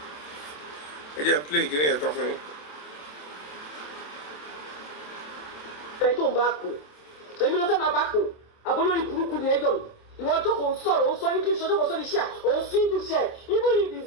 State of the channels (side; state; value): right; late; 27 ms